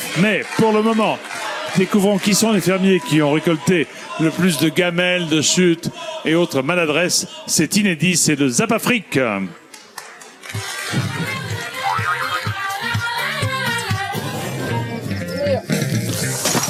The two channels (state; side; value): identical; both; correlation 1.00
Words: Mais pour le moment, découvrons qui sont les fermiers qui ont récolté le plus de gamelles, de chutes et autres maladresses. C'est inédit, c'est le Zap Afrique.